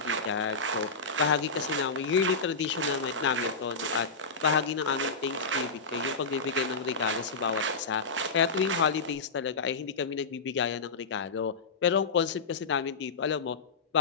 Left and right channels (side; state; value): right; quieter; 4.2 dB